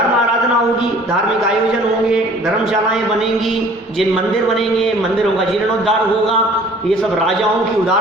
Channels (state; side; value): normal; both; correlation 0.52